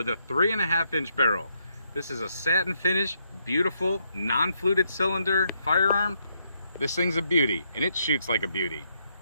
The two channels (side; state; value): both; inverted; correlation -0.76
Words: a 3.5-inch barrel. This is a satin finish, beautiful, non-fluted cylinder firearm. This thing's a beauty and it shoots like a beauty.